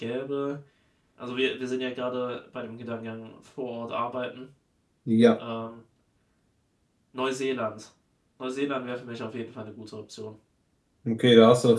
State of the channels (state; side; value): identical; both; correlation 1.00